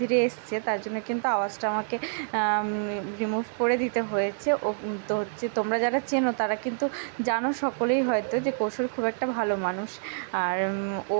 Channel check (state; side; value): silent; left; digital silence